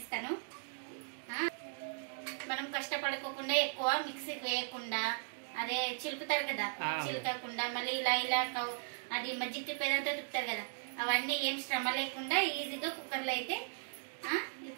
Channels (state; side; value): silent; left; digital silence